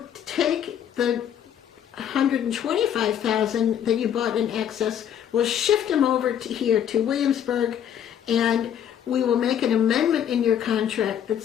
take the 125,000 that you bought in excess, we'll shift them over here to Williamsburg, and we will make an amendment in your contract that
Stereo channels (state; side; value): quieter; right; 9.5 dB